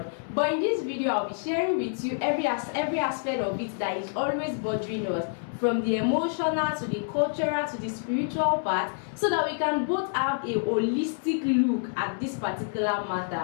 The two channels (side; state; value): right; silent; 60 dB below the other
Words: But in this video, I'll be sharing with you every aspect of it that is always bothering us, from the emotional to the cultural to the spiritual part, so that we can both have a holistic look at this particular